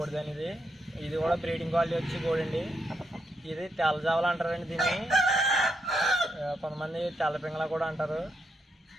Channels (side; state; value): both; normal; correlation 0.80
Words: అనేది. ఇది కూడా బ్రీడింగ్ క్వాలిటీ వచ్చి కోడి అండి. ఇది తెల్లజావలు అంటారండి దీన్ని, కొంతమంది తెల్లపింగళ కూడా అంటారు.